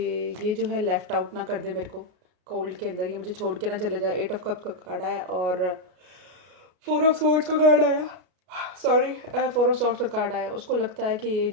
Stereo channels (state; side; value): late; left; 33 ms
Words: ये जो है लेफ़्ट आउट ना कर दे मेरे को कोल्ड के अंदर, ये मुझे छोड़ के ना चले जाए. 8 of cups का कार्ड आया और 4 of swords का कार्ड आया. सॉरी 4 of swords का कार्ड आया. उसको लगता है कि ये